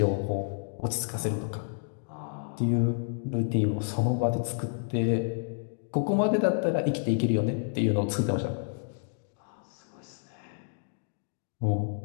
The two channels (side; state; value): right; silent; digital silence